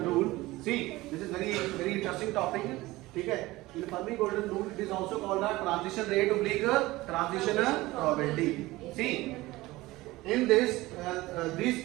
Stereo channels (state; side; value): quieter; left; 19.2 dB